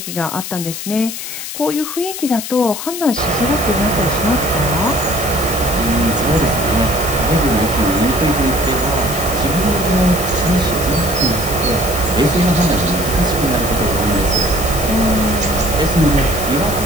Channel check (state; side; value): noise; left; hiss, 7 dB below the sound